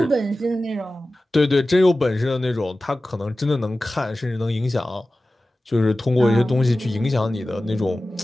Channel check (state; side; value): normal; both; correlation 0.96